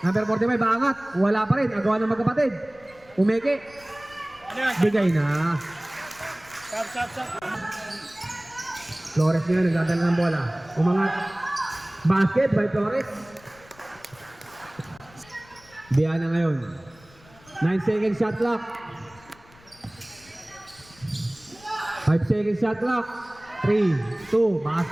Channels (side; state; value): left; noise; rumble, 26 dB below the sound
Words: Number 45. Baangat. Wala pa rin. Agawa ng magkapatid. Umeke. Ano yan? Bigay na. Sap. Flores ngayon, nagdadala ng bola. Umangat. Basket by Flores. Biana ngayon. 9 seconds shot clock. 5 seconds shot clock. 3, 2,